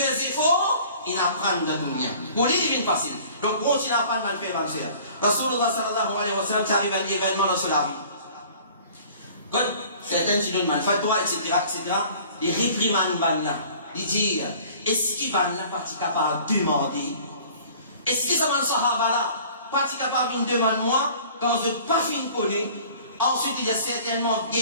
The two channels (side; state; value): both; inverted; correlation -0.49